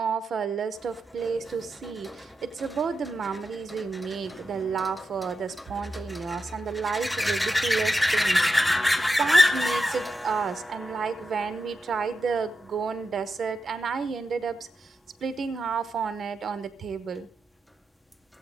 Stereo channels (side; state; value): both; normal; correlation 0.88